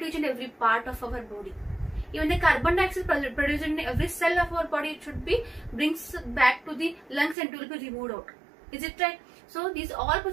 each and every part of our body. Even the carbon dioxide produced in every cell of our body, it should be brings back to the lungs and it will be removed out. Is it right? So these all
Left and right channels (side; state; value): left; drops out; at 7.4 s